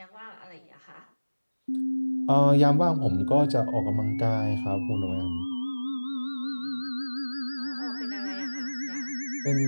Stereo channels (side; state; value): both; inverted; correlation -1.00